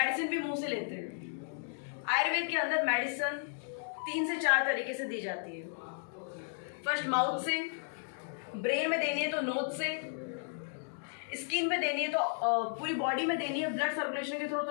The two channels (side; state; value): right; silent; digital silence